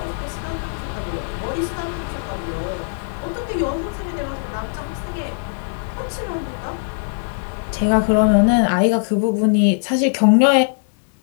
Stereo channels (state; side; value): silent; right; digital silence